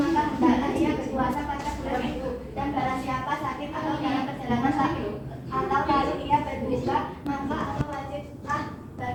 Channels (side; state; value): both; identical; correlation 1.00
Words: hendaklah ia berpuasa pada bulan itu. Dan barang siapa sakit atau dalam perjalanan sakit atau lalu ia berbuka, maka atau wajiblah